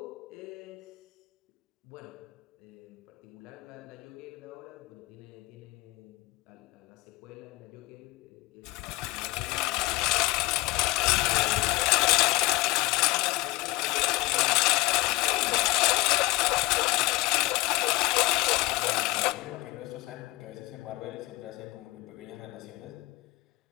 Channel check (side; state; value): right; quieter; 20.3 dB